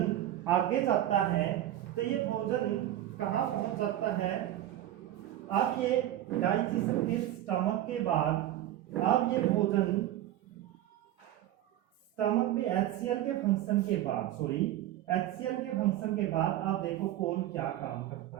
आगे जाता है तो ये भोजन कहां पहुंच जाता है, अब ये डाइजेशन के स्टमक के बाद अब ये भोजन स्टमक में HCl के फंक्शन के बाद, HCl के फंक्शन के बाद आप देखो कौन क्या काम करता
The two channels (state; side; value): quieter; left; 13.1 dB